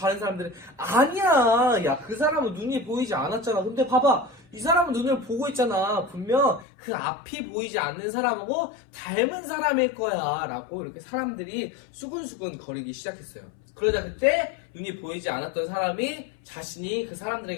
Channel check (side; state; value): right; drops out; at 6.7 s